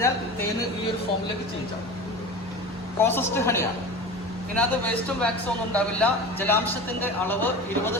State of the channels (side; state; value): both; normal; correlation 0.33